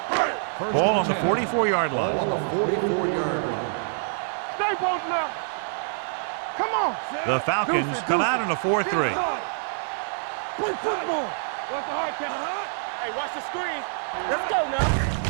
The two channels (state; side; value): silent; left; digital silence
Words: Ball on the 44-yard line. On the 44-yard line. Stay both now. Come on. The Falcons come out in a 4-3. Play football. What's the hard count? Hey, watch the screen. Let's go now.